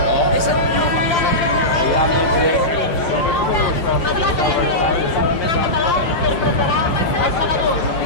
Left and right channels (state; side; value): late; right; 5.9 ms